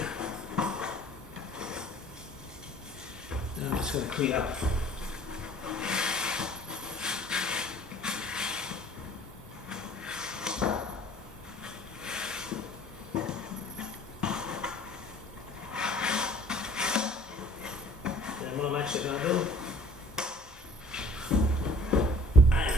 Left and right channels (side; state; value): both; normal; correlation 0.51